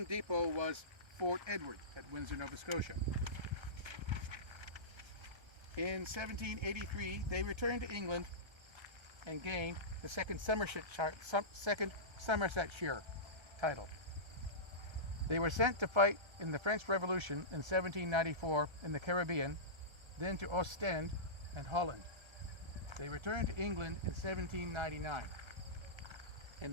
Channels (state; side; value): late; left; 1.3 ms